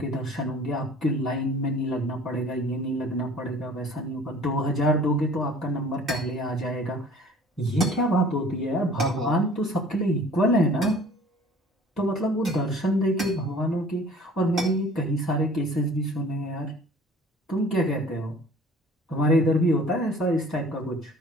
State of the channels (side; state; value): both; normal; correlation 0.49